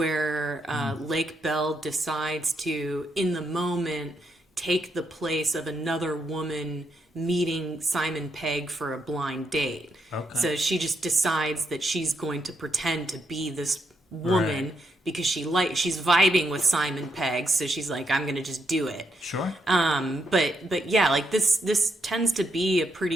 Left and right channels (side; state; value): both; normal; correlation 0.79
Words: Lake Bell decides to, in the moment, take the place of another woman meeting Simon Pegg for a blind date. Okay. So she just decides that she's going to pretend to be this woman because she's vibing with Simon Pegg, so she's like, I'm gonna just do it. Sure. But yeah, like this tends to be a